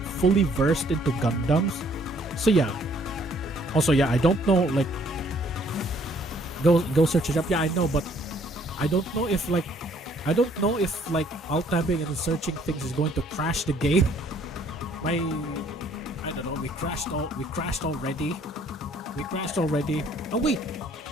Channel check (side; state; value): both; normal; correlation 0.62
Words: versed into Gundams, so yeah. Also, yeah, I don't know. Like, go search it up. Yeah, I know, but I don't know if like alt-tabbing and searching things is going to crash the game. I don't know. We crashed already. Oh wait,